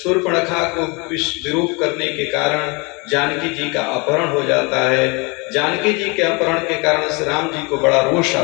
को विरूप करने के कारण जानकी जी का अपहरण हो जाता है। जानकी जी के अपहरण के कारण श्री राम जी को बड़ा रोष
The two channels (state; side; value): quieter; right; 29.0 dB